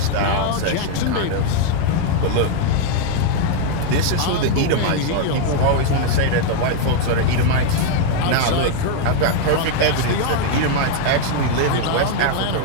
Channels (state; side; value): different; both; correlation 0.00